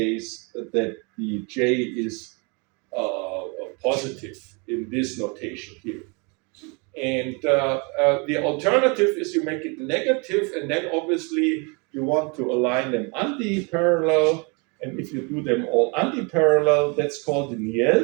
that the J is positive in this notation here. And the alternative is you make it negative, and then obviously you want to align them anti-parallel. And if you do them all anti-parallel, that's called the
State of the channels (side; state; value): left; quieter; 31.9 dB